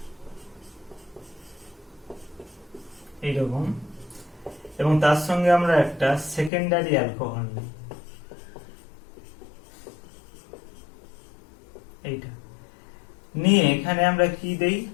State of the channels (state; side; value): drops out; right; at 6.5 s